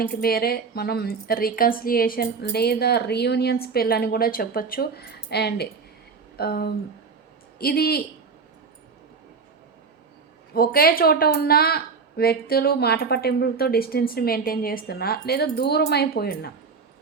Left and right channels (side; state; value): left; quieter; 5.1 dB